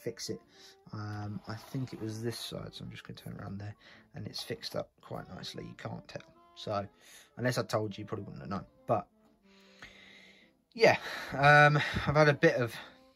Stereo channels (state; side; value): identical; both; correlation 1.00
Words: it. I think it was this side, so I'm just going to turn around there, and it's fixed up quite nicely. You can't tell. So, unless I told you, you probably wouldn't have known. But, yeah, I've had a bit of